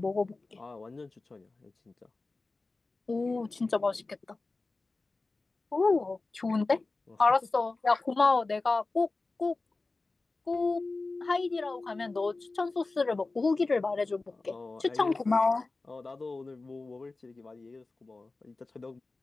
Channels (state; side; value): quieter; right; 3.5 dB